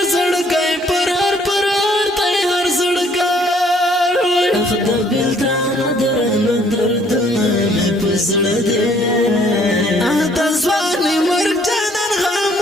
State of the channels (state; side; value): normal; both; correlation 0.62